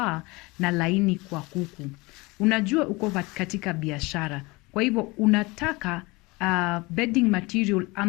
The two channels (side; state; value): right; quieter; 24.2 dB